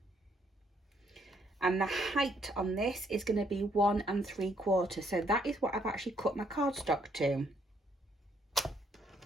and the height on this is going to be 1 3/4. So that is what I've actually cut my cardstock to,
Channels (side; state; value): both; normal; correlation 0.70